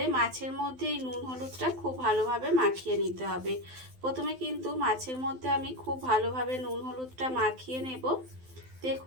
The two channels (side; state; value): left; late; 12 ms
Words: মাছের মধ্যে এই নুন হলুদটা খুব ভালোভাবে মাখিয়ে নিতে হবে। প্রথমে কিন্তু মাছের মধ্যে আমি খুব ভালোভাবে নুন হলুদটা মাখিয়ে নেব।